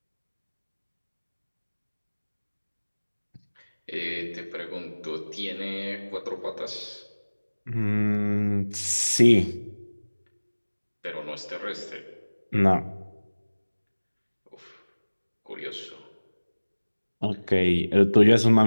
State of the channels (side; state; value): both; inverted; correlation -1.00